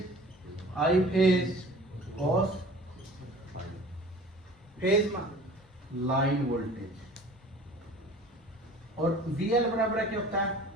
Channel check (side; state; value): both; normal; correlation 0.45